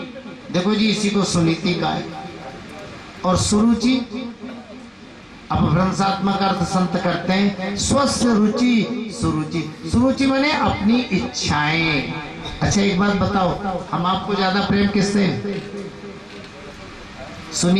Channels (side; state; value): both; identical; correlation 1.00